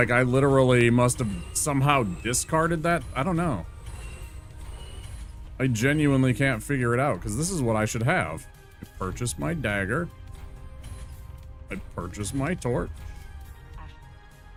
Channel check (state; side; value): identical; both; correlation 1.00